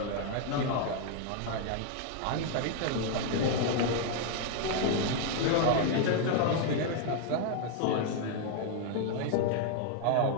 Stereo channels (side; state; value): both; different; correlation 0.00